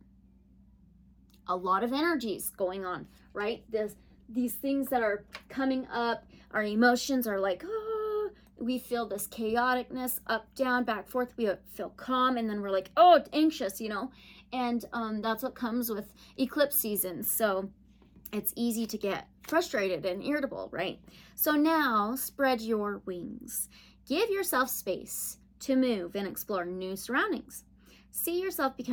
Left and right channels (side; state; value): both; identical; correlation 1.00